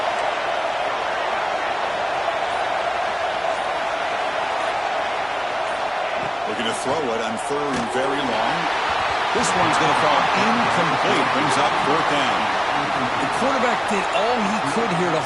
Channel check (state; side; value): identical; both; correlation 1.00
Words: Looking to throw it on third and very long. This one's going to fall incomplete. Brings up fourth down. The quarterback did all he could here to